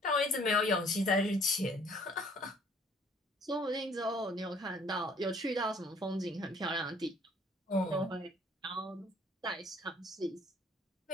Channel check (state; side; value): normal; both; correlation 0.58